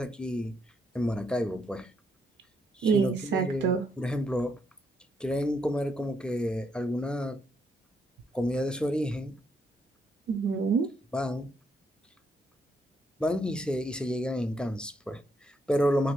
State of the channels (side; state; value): both; normal; correlation 0.76